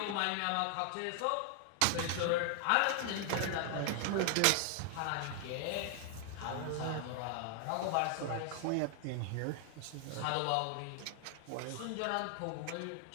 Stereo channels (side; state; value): both; different; correlation 0.00